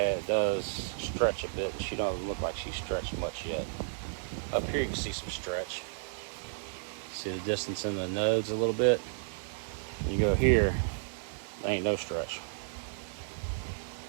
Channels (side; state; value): left; silent; 56 dB below the other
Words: does stretch a bit, and she doesn't look like she's stretched much yet. Up here you can see some stretch. See the distance in the nodes a little bit. You go here, there ain't no stretch.